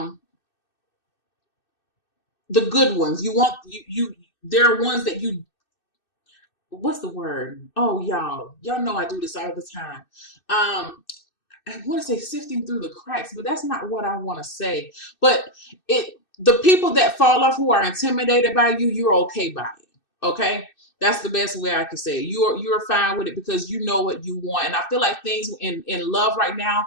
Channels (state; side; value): late; right; 2.6 ms